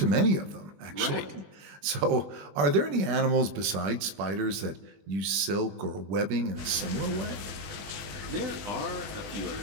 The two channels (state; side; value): late; left; 20 ms